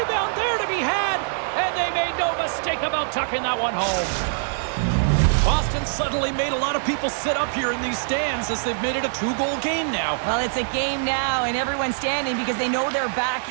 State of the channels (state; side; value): silent; left; digital silence